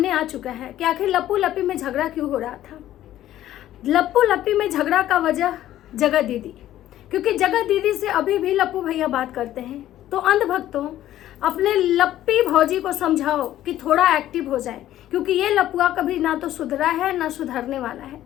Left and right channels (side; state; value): right; quieter; 13.1 dB